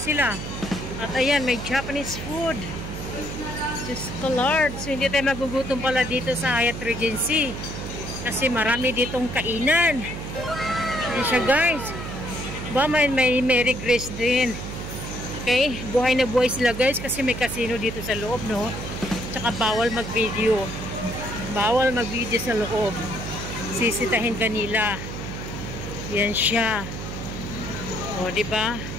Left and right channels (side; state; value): right; noise; hum, 8 dB below the sound